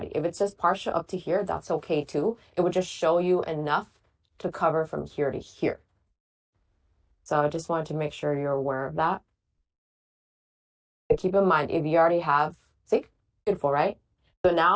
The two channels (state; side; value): identical; both; correlation 1.00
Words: If it's just partial up to here, that's okay too. It will just show you enough to cover from here to here. So I just wanted to make sure you're aware of that. But keep in mind, if you already have, see, beautiful, right? So